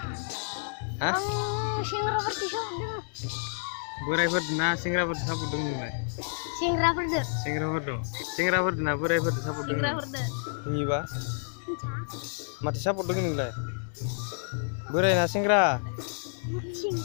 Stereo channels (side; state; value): right; silent; digital silence